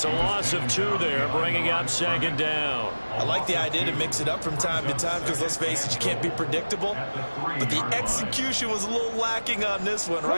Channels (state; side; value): inverted; both; correlation -1.00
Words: a loss of 2 there, bringing up 2nd down. I like the idea to mix it up from time to time because, let's face it, you can't be predictable. But the execution was a little lacking on this one,